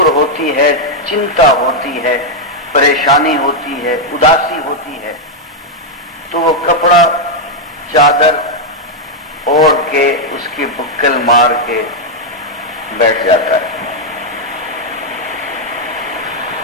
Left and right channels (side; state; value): both; normal; correlation -0.01